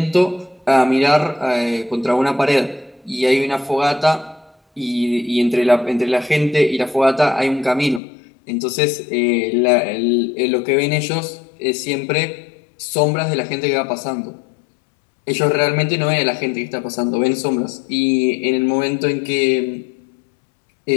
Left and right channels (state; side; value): drops out; right; at 8.0 s